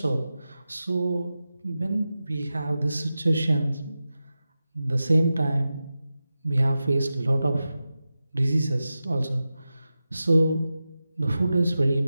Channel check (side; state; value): both; inverted; correlation -0.93